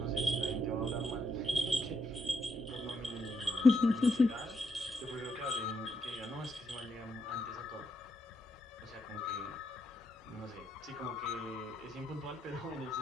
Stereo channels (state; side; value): normal; both; correlation 0.79